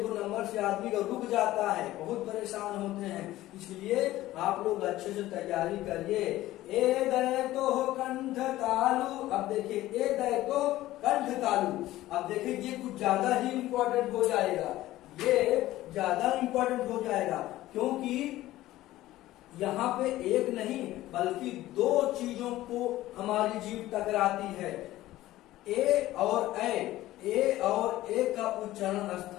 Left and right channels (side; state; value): right; quieter; 15.8 dB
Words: नंबर से आदमी का रुक जाता है, बहुत परेशान होते हैं, इसलिए आप लोग अच्छे से तैयारी करिए। ए दय तो कंठ तालु, अब देखिए ए दय तो कंठ तालु, अब देखिए ये कुछ ज्यादा ही इम्पोर्टेंट हो जाएगा, ये ज्यादा इम्पोर्टेंट हो जाएगा, क्योंकि यहाँ पे एक नहीं बल्कि 2 चीजों को हमारी जीभ टकराती है, ए और ए का उच्चारण